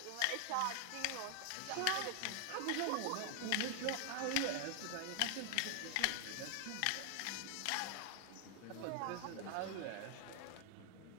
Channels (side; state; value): both; different; correlation 0.00